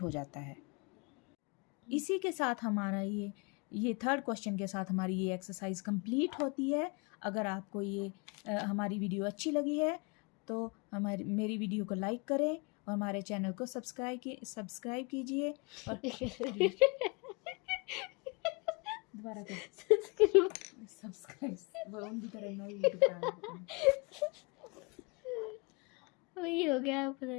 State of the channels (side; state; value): right; quieter; 30.2 dB